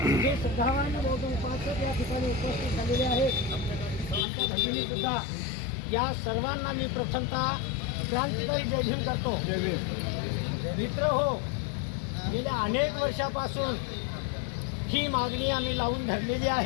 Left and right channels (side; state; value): right; drops out; at 4.2 s